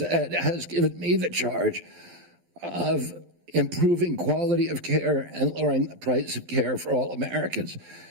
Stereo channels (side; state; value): left; late; 12 ms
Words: given me the charge of improving quality of care and lowering the price of care for all Americans.